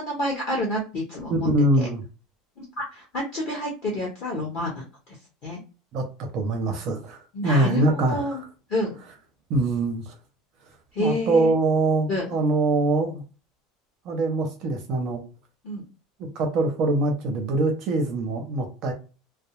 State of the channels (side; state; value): both; normal; correlation 0.45